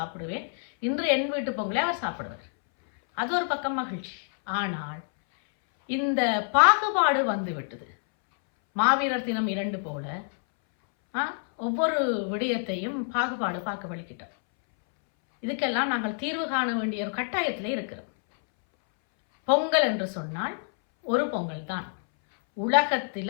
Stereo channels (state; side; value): silent; right; 60 dB below the other